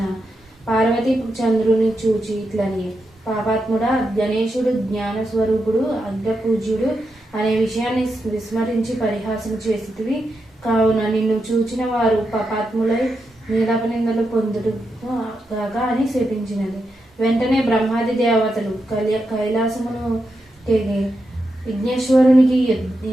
పార్వతి చంద్రుని చూచి ఇట్లని, పాపాత్ముడా, గణేశుడు జ్ఞానస్వరూపుడు, అగ్రపూజ్యుడు అనే విషయాన్ని విస్మరించి పరిహాసం చేసితివి. కావున నిన్ను చూచిన వారు పాపాత్ములై నీలాపనిందలు పొందుడు గాక అని శపించినది. వెంటనే బ్రహ్మాది దేవతలు కైలాసమును తెగి విఘ్నేశ్వరునికి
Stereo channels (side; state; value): both; normal; correlation 0.86